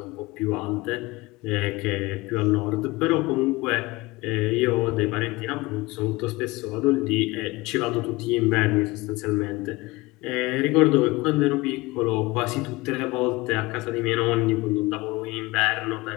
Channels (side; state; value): right; quieter; 21.7 dB